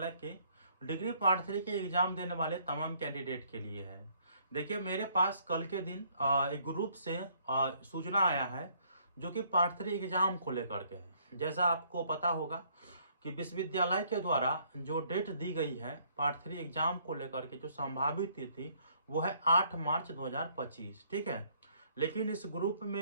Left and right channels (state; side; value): inverted; both; correlation -0.65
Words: के डिग्री पार्ट 3 के एग्जाम देने वाले तमाम कैंडिडेट के लिए है। देखिए, मेरे पास कल के दिन एक ग्रुप से सूचना आया है जो कि पार्ट 3 एग्जाम को लेकर के है। जैसा आपको पता होगा कि विश्वविद्यालय के द्वारा जो डेट दी गई है पार्ट 3 एग्जाम को लेकर के, जो संभावित तिथि वो है 8 मार्च 2025। ठीक है, लेकिन इस ग्रुप